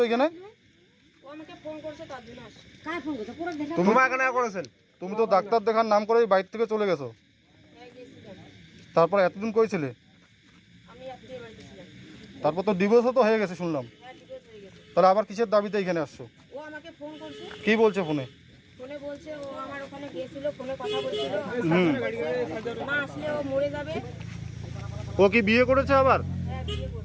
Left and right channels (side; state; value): both; identical; correlation 1.00